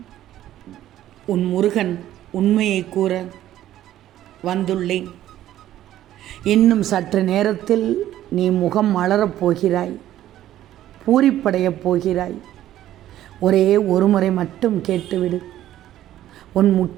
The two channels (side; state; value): left; quieter; 12.9 dB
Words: உன் முருகன் உண்மையை கூற வந்துள்ளேன். இன்னும் சற்று நேரத்தில் நீ முகம் மலரப் போகிறாய், பூரிப்படையப் போகிறாய். ஒரே ஒரு முறை மட்டும் கேட்டுவிடு, உன்